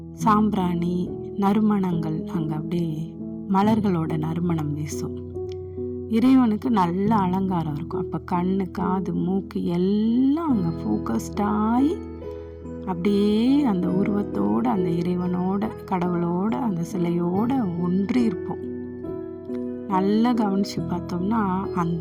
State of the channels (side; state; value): both; identical; correlation 1.00